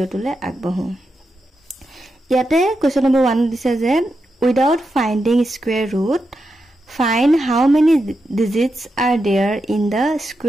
আগবাঢ়ো। ইয়াতে কোৱেশ্চন নম্বৰ 1 দিছে যে without finding square root find how many digits are there in the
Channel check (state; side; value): normal; both; correlation 0.87